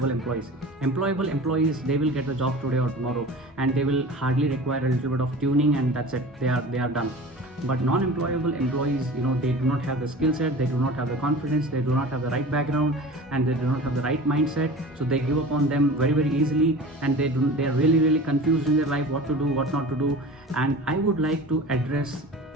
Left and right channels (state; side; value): normal; both; correlation 0.37